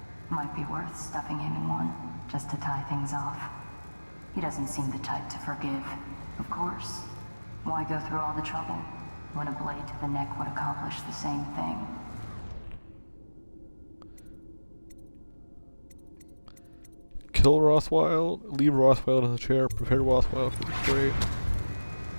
Might be worth stuffing him in one, just to tie things off. He doesn't seem the type to forgive. Of course. Why go through all the trouble when a blade to the neck would accomplish the same thing? Kill Rothwild, leave Rothwild in the chair, prepare Rothwild for the freight.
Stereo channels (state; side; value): inverted; both; correlation -1.00